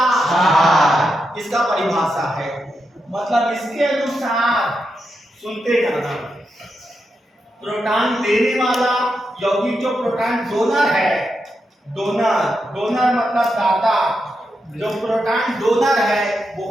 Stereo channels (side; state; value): both; normal; correlation 0.85